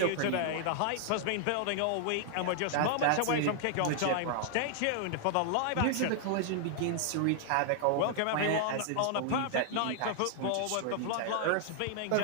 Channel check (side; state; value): both; different; correlation 0.00